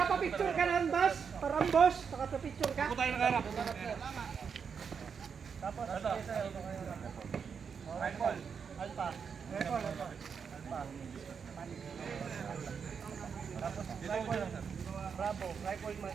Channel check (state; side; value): quieter; left; 6.4 dB